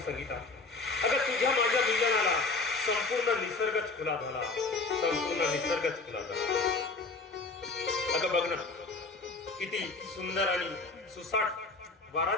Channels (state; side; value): quieter; right; 3.8 dB